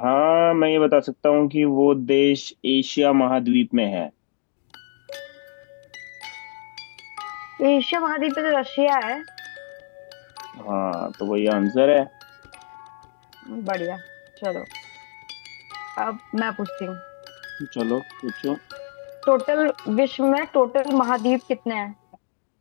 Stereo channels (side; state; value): right; silent; 63 dB below the other